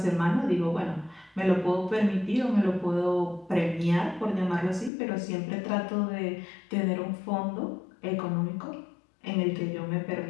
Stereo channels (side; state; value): right; drops out; at 4.9 s